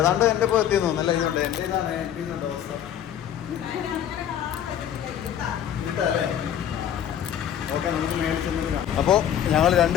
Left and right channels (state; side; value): quieter; right; 10.1 dB